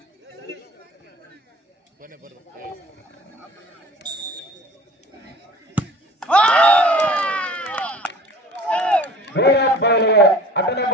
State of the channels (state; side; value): normal; both; correlation 0.46